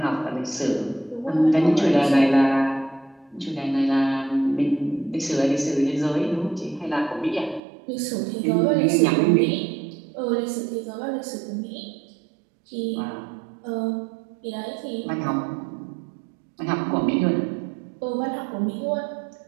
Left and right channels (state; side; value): drops out; left; at 7.6 s